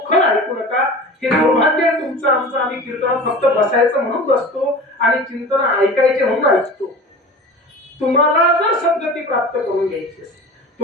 ऐकू नका. हे दुर्भाग्य आहे तुमचं आमचं. आम्ही कीर्तनात फक्त बसायचं म्हणून बसतो आणि चिंतन ऐकायचे म्हणून ऐकतो. तुम्हाला जर सद्गती प्राप्त करून घ्यायची असेल,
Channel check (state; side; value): normal; both; correlation 0.36